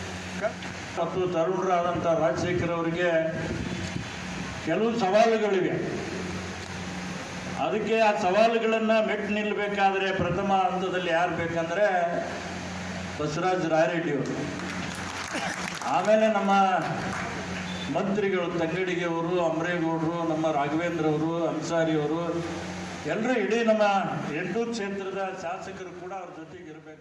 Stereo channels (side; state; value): both; identical; correlation 1.00